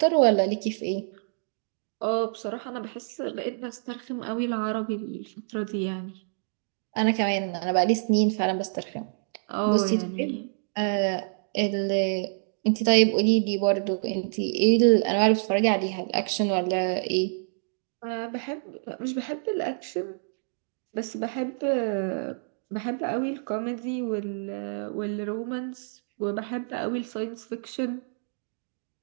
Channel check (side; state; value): left; silent; digital silence